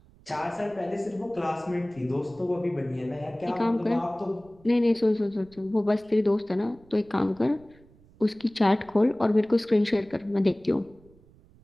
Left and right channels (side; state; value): right; noise; rumble, 27 dB below the sound